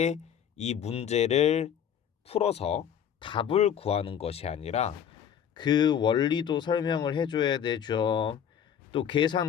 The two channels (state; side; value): quieter; right; 8.8 dB